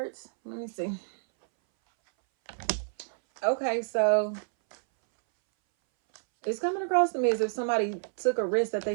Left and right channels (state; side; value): silent; left; 59 dB below the other